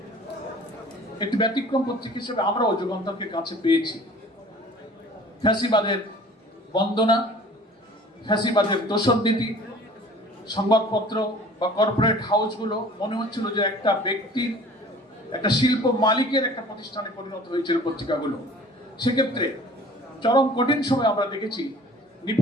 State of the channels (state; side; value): normal; both; correlation 0.47